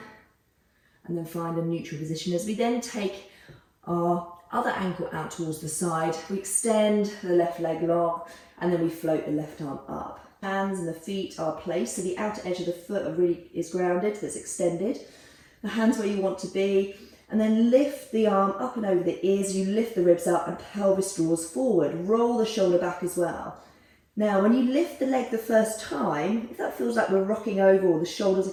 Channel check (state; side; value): identical; both; correlation 1.00